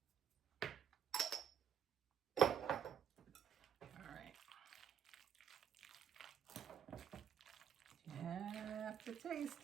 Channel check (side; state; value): left; quieter; 8.3 dB